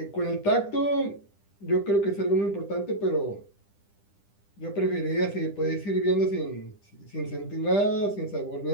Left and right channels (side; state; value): right; late; 10 ms